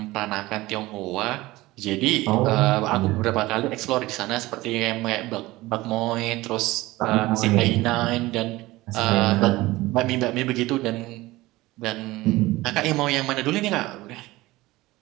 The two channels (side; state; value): left; quieter; 19.1 dB